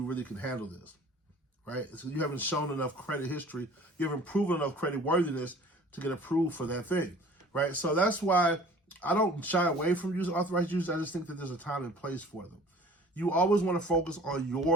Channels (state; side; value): normal; both; correlation 0.48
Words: really can handle this, right? So you haven't shown enough credit history, you haven't proven enough credit worthiness to get approved for that thing, right? So that's why I don't shy away from using authorized users. I just think that there's a time and place for them. You always want to focus on